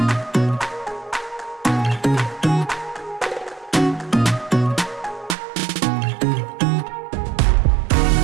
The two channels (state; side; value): drops out; left; at 5.4 s